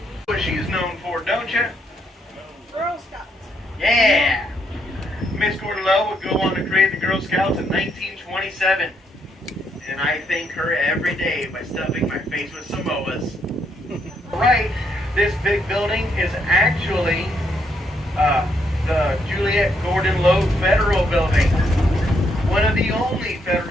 What she's known for, don't you? Girl Scouts. Yeah! Miss Cordello would go on to create the Girl Scouts in 1927. And I thank her every day by stuffing my face with Samoas. Right, this big building is actually the Juliet Gordon Low Federal Building. One of the only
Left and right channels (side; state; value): both; normal; correlation 0.75